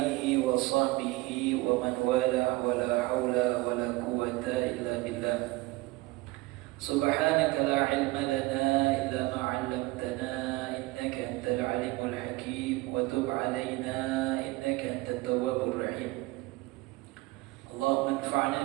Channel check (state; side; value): quieter; left; 21.4 dB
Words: wa sahbihi wa man wala wa la hawla wa la quwwata illa billah. Subhanaka la ilma lana illa ma 'allamtana innaka antal alimul hakim wa tub 'alaina innaka antat tawwabur rahim. Allahumma